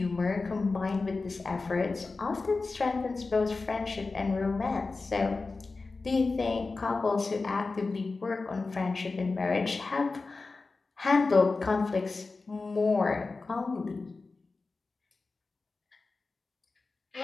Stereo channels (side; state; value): right; quieter; 3.9 dB